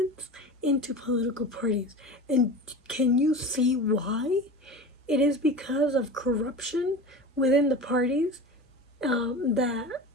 into political parties. And can you see why? It is because of corruption within the parties that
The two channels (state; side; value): normal; both; correlation 0.32